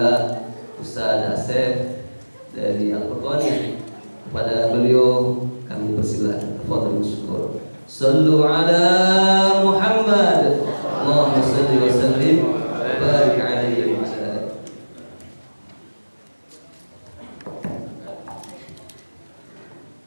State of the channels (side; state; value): both; inverted; correlation -1.00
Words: Ustaz Asef dari Al-Qur'an. Kepada beliau kami persilakan. Tafadhal syukur. Sallu ala Muhammad. Allahumma salli wa sallim wa barik alaihi wa ala alihi.